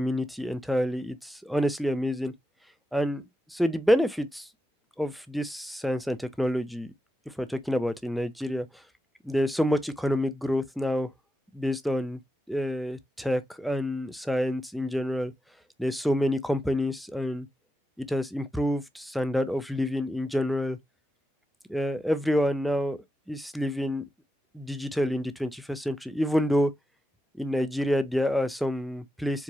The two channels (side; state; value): both; normal; correlation 0.89